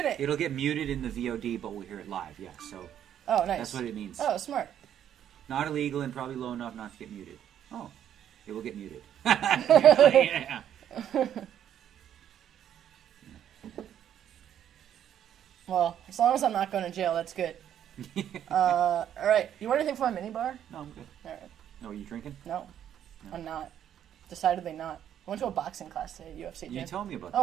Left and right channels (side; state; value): left; quieter; 10.1 dB